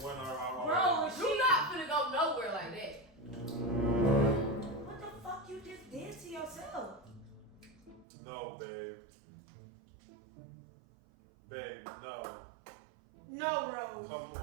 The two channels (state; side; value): drops out; left; at 8.1 s